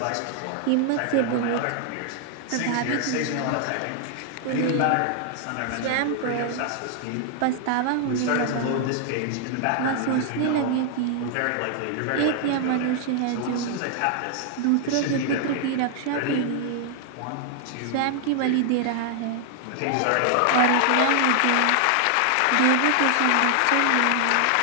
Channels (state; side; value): different; both; correlation 0.00